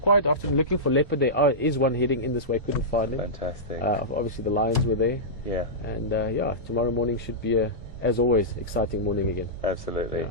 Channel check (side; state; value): both; normal; correlation -0.14